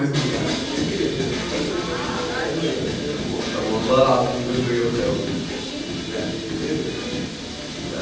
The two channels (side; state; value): both; identical; correlation 1.00